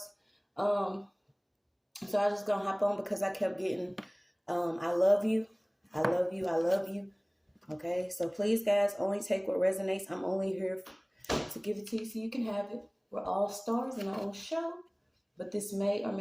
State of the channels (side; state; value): both; identical; correlation 1.00